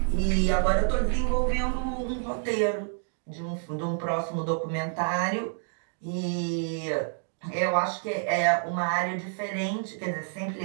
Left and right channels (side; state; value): left; silent; digital silence